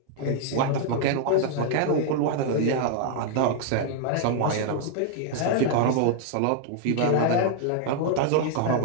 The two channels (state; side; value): different; both; correlation 0.00